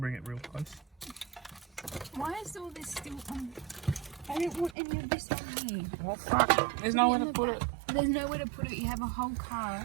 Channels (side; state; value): left; drops out; at 4.8 s